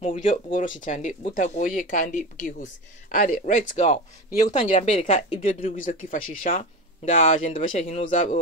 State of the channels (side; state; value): both; normal; correlation 0.25